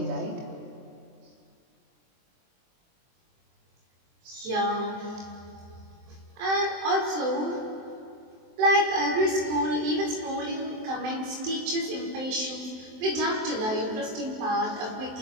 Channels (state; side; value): late; left; 23 ms